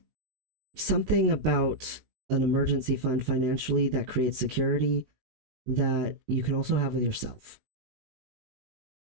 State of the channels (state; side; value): late; left; 19 ms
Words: something about an emergency fund financially that creates security that you can also have with yourself.